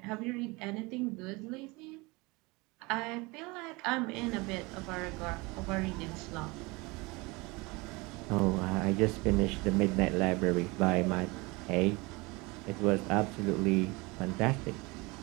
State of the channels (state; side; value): quieter; left; 24.9 dB